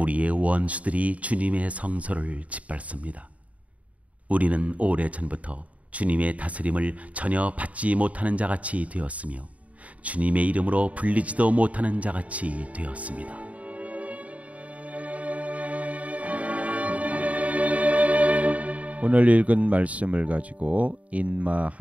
원수들이 주님의 성소를 짓밟습니다. 우리는 오래전부터 주님의 다스림을 전혀 받지 못하는 자같이 되었으며 주님의 이름으로 불리지도 못하는 자같이 되었습니다. 오늘 읽은 말씀을 가지고 인마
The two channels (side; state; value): left; late; 0.068 ms